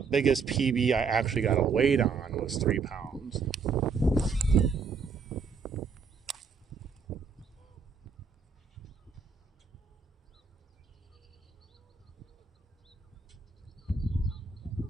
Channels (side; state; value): left; quieter; 5.2 dB